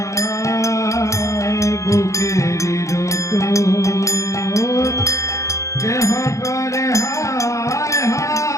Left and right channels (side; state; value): right; late; 0.15 ms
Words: বুকের রত কেহ করে হায়